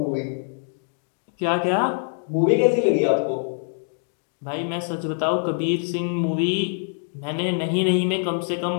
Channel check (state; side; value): silent; right; digital silence